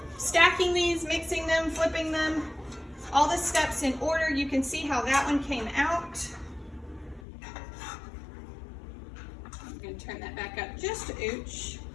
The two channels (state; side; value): drops out; right; at 7.2 s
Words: stacking these, mixing them, flipping them, all the steps in order. You can see how that one came out. I'm gonna turn that back up just a ooch.